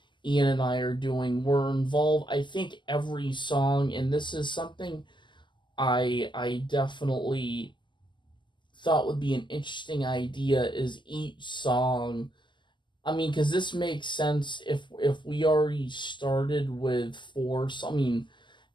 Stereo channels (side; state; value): right; late; 0.23 ms